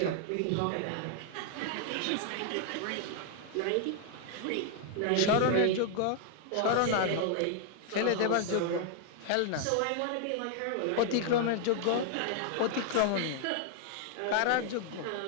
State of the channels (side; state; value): both; different; correlation 0.00